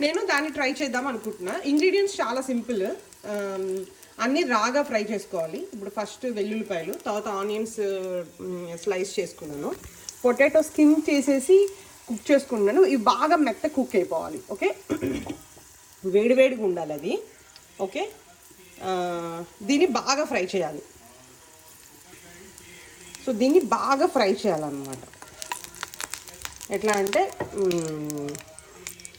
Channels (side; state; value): both; identical; correlation 1.00